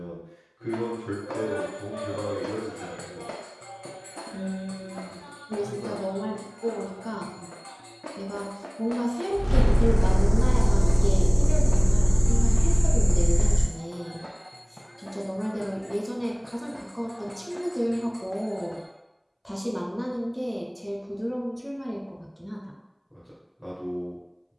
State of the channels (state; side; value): identical; both; correlation 1.00